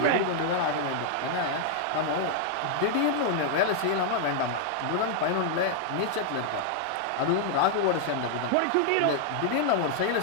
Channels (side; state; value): both; different; correlation 0.00